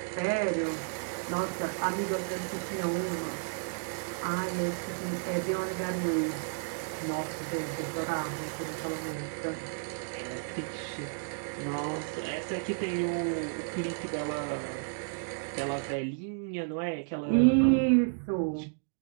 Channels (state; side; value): silent; left; digital silence